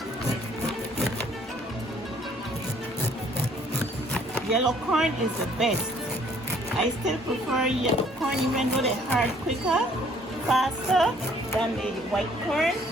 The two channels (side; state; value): both; normal; correlation 0.60